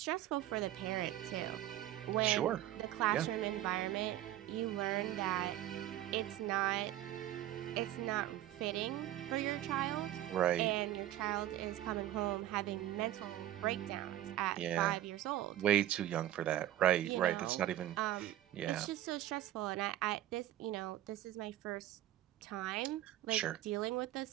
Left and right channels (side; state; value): left; quieter; 13.4 dB